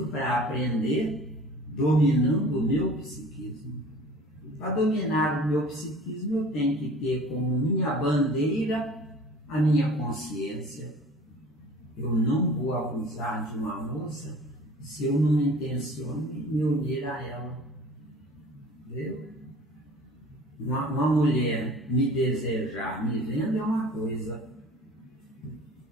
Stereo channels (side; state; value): both; normal; correlation 0.45